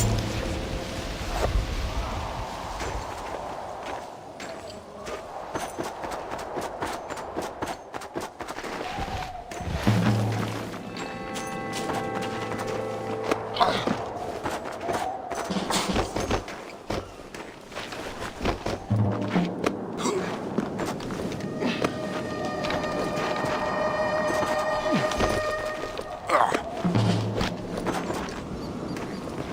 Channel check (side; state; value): both; identical; correlation 1.00